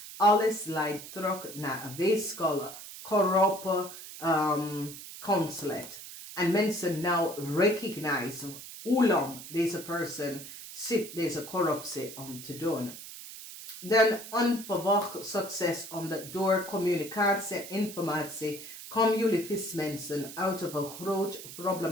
Alles leidt terug naar een weeskale, corrupte consulate. En mensen nou recognize hoe lang deze persoon zit deze corruptie om te doen. Dan onverwacht succes omdat door communicatie en informatie komen jullie vismensen uit een groot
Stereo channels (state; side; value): noise; right; hiss, 13 dB below the sound